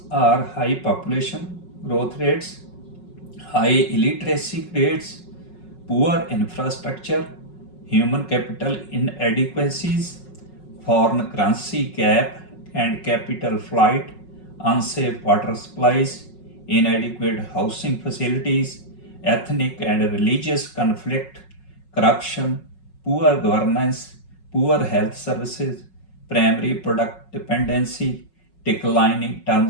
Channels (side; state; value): right; late; 5.4 ms